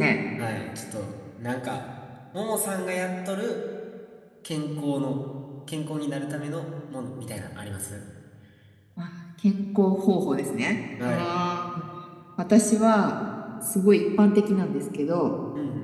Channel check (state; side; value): identical; both; correlation 1.00